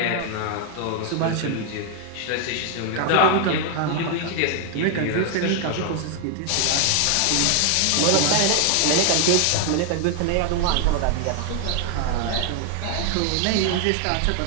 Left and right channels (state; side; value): different; both; correlation 0.00